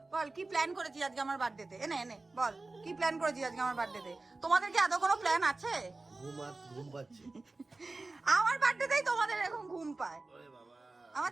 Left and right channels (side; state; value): left; quieter; 3.3 dB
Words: বল কি প্ল্যান করেছিস আজকে আমার বার্থডেতে? এনে এনে বল কি প্ল্যান করেছিস আজকে আমার বার্থডেতে? তোমাদের কি আদৌ কোনো প্ল্যান আছে? ঘুম পাচ্ছে আমার বার্থডেতেই তোমাদের এরকম ঘুম পায়। আমার